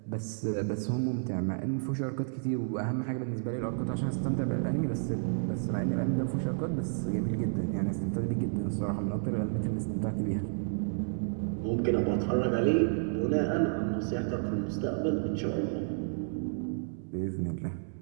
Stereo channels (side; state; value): left; silent; digital silence